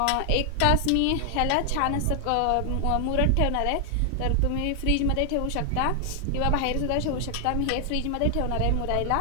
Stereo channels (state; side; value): different; both; correlation 0.00